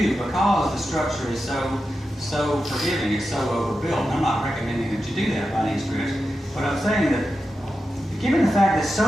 because the structure is so forgiving, it's so overbuilt. And I'm not recommending that you do that by any stretch. But I'm saying that given the fact that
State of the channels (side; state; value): both; normal; correlation 0.90